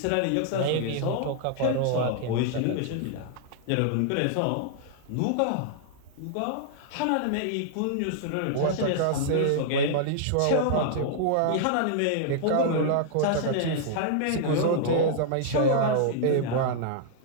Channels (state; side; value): different; both; correlation -0.01